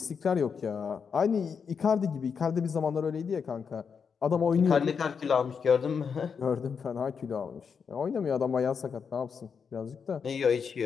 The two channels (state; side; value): quieter; right; 6.3 dB